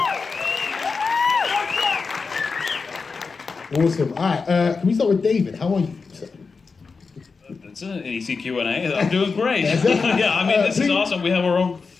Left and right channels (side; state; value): right; quieter; 4.7 dB